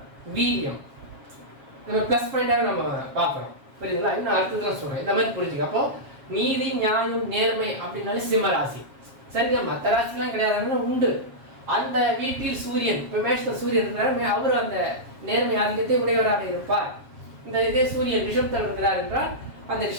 வீரியம். நம்ம பிளஸ் பாயிண்டாக நம்ம பார்க்குறோம். புரியுதுங்களா? இன்னும் அடுத்ததுலாம் சொல்கிறேன், இந்த மாதிரி புரிஞ்சுக்க. அப்போ நீதி, நியாயம், நேர்மை அப்படின்னாலே சிம்ம ராசி. சரிங்க, மற்ற ராசிலாம் கிடையாதுன்னா உண்டு. அந்த வீட்டில் சூரியன், இப்போ மேஷத்தில் சூரியன் இருக்கிறார், அவர் அந்த நேர்மை ஆதிக்கத்தை உடையவராக இருப்பார். இந்த இதே சூரியன் ரிஷபத்தில் இருக்கிறார் என்றால் அந்த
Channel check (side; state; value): left; late; 7.3 ms